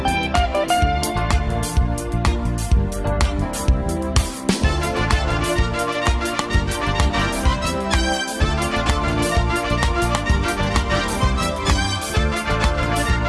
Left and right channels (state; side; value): identical; both; correlation 1.00